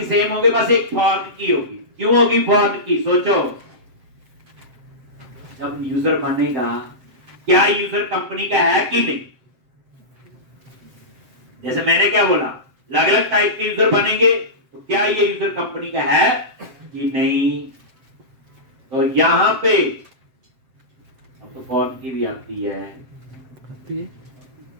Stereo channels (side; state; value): left; late; 7.6 ms